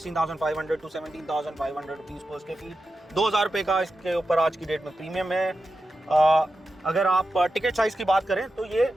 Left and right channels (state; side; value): normal; both; correlation 0.90